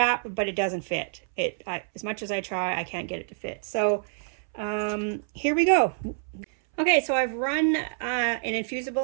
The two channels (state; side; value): silent; left; 60 dB below the other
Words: but it doesn't fit. As much as I try, I can't get it to fit. So here we go. Okay, so I've run an